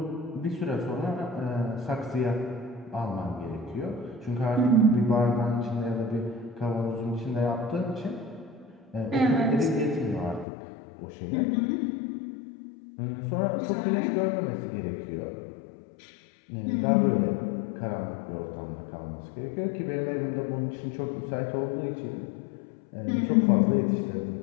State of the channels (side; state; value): right; drops out; at 10.5 s